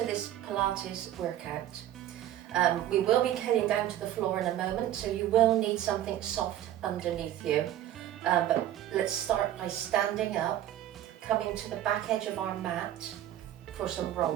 this Pilates workout. We will be heading down to the floor in a moment, so you will need something soft underneath you. But let's start by standing up, coming to the back edge of our mat for some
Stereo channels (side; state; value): left; quieter; 12.4 dB